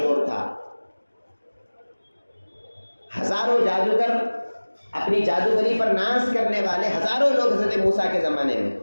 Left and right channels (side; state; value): both; inverted; correlation -1.00